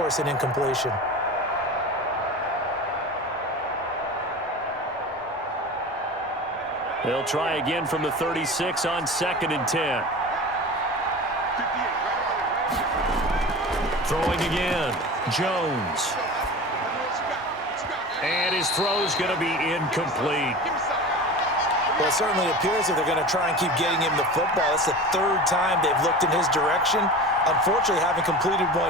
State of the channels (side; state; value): both; normal; correlation 0.33